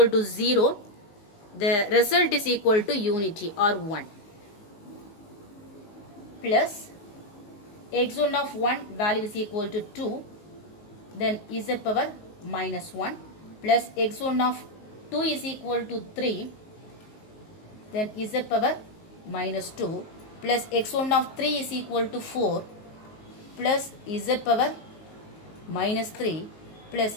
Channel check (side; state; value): right; late; 19 ms